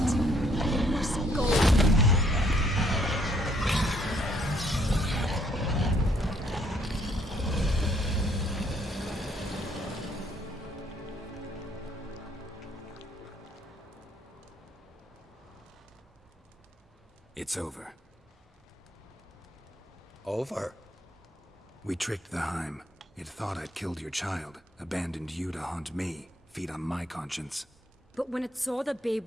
You must go. It's over. Over? We tricked the Heim. It thought I'd killed your child, abandoned you to haunt me, feed on my conscience. But when it saw the babe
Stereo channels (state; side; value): normal; both; correlation 0.67